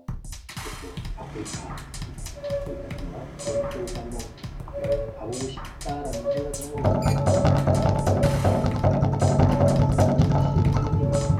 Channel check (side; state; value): both; identical; correlation 1.00